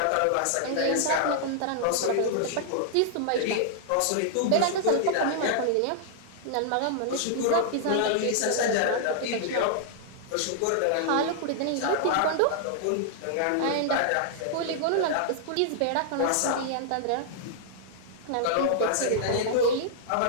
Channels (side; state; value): both; different; correlation -0.01